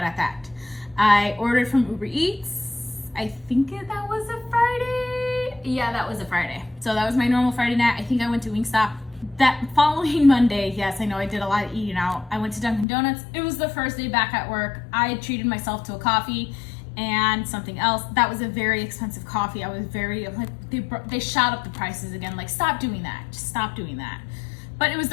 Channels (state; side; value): drops out; right; at 12.9 s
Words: that. I ordered from Uber Eats. I think that was a Friday. Yeah, that was a Friday. So that was my normal Friday night. I think I went to Wingstop. That following Monday, yes, I know I did a lot of eating out. I went to Dunkin' Donuts. It was the first day back at work. I had treated myself to a coffee and something else. That was a very expensive coffee. I was very, like, they shot up the prices again. Like, stop doing that. Just stop doing that. But it was